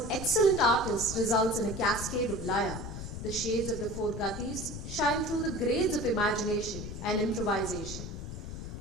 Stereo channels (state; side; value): noise; left; rumble, 8 dB below the sound